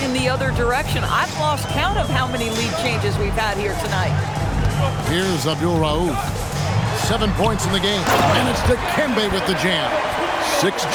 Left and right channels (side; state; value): both; identical; correlation 1.00